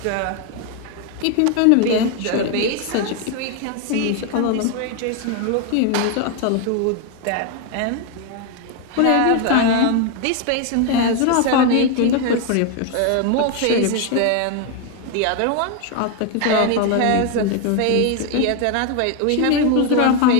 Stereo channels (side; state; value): both; different; correlation 0.01